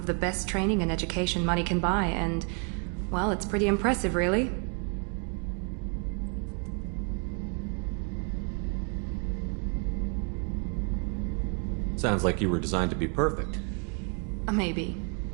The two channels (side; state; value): left; quieter; 38.4 dB